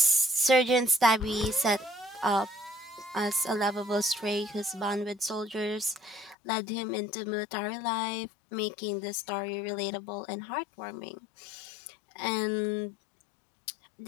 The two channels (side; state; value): right; drops out; at 6.4 s